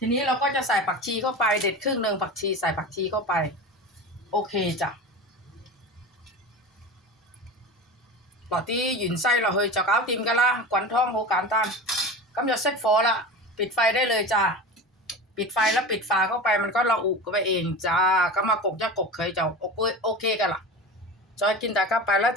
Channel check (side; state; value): both; normal; correlation 0.30